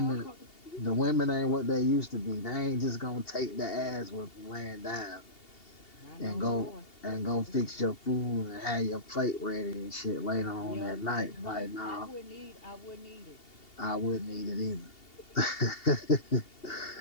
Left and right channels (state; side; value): late; right; 2.8 ms